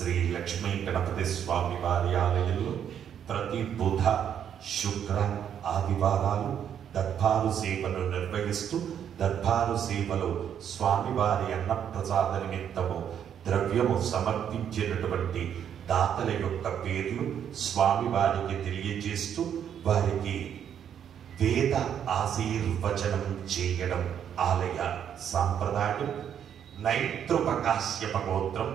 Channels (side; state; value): left; quieter; 9.0 dB